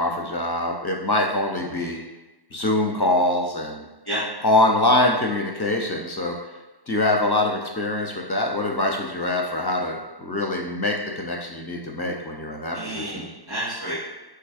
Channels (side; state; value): right; late; 1.1 ms